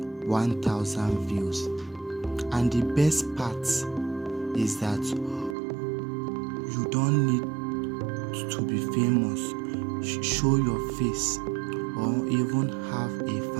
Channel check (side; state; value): left; drops out; at 5.6 s